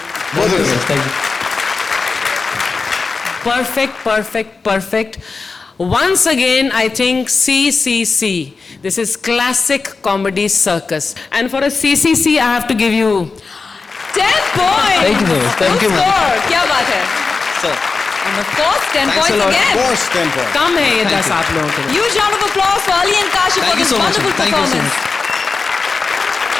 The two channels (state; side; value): quieter; right; 4.4 dB